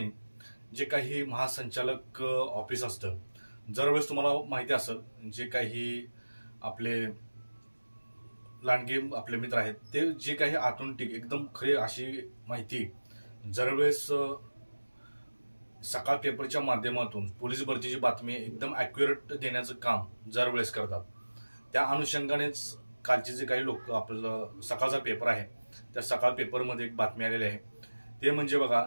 जे काही महासंचालक ऑफिस असतं, दरवेळेस तुम्हाला माहिती असेल, जे काही आपले लांडगे आपले मित्र आहेत ते जे काही आतून एकदम खरी अशी माहिती दरवेळेस सकाळ पेपरच्या माध्यमातून पोलीस भरतीची बातमी एकदम ॲक्युरेट देण्याचं काम दरवेळेस करतात। त्या अनुषंगानेच कालचे जे काही लोक आपलं सकाळचा पेपर आहे त्या सकाळ पेपरमध्ये एक बातमी आलेली आहे, ते म्हणजे बघा,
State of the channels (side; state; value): both; inverted; correlation -1.00